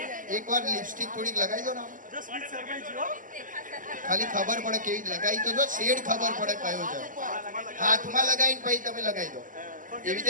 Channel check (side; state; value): left; late; 0.38 ms